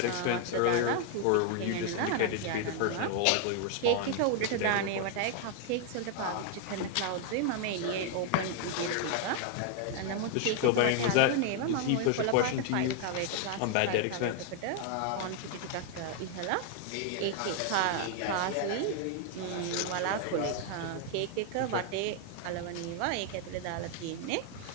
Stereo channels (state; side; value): different; both; correlation 0.00